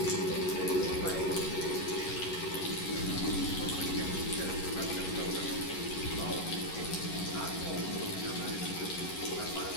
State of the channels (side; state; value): right; late; 11 ms